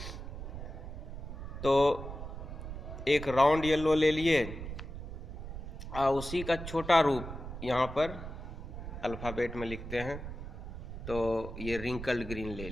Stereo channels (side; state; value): right; noise; rumble, 9 dB below the sound